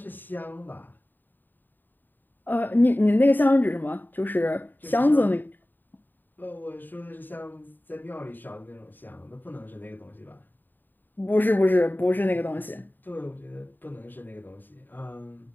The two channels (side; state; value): right; late; 0.090 ms